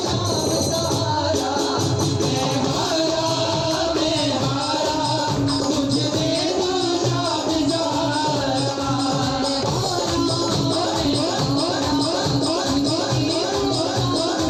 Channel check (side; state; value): both; identical; correlation 1.00